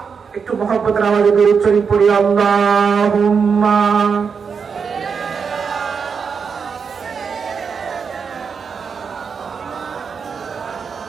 একটু মহব্বতের আওয়াজে দরুদ শরীফ পড়ি, আল্লাহুম্মা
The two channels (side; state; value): left; quieter; 6.0 dB